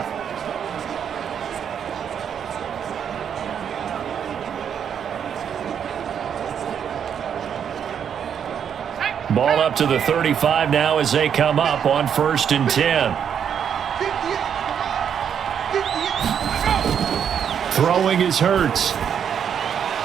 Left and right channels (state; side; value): quieter; left; 8.1 dB